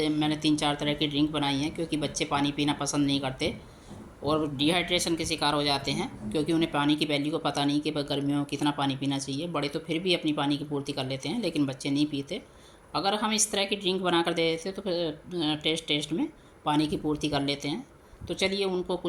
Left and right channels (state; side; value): identical; both; correlation 1.00